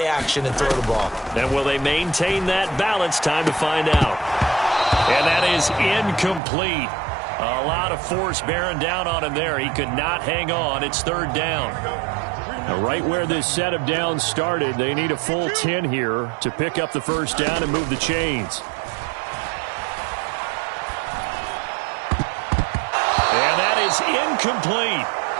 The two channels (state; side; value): drops out; left; at 6.4 s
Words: action and throw the ball. And will they maintain that balance? Time to find out. And that is incomplete. A lot of force bearing down on him there. He could not hang on. It's 3rd down. Now, right where this set of downs started, they need a full 10 here to pick up the 1st down and move the chains. And that is incomplete.